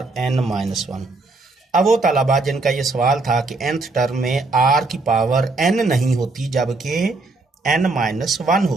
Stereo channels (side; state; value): left; quieter; 3.4 dB